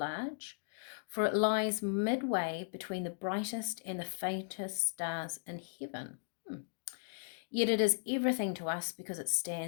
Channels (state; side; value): silent; right; digital silence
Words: for it lies midway between the brightest and the faintest stars in heaven. Yet it is everything to us because it